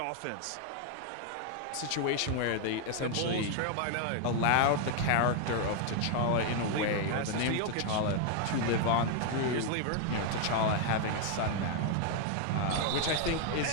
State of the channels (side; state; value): both; different; correlation 0.01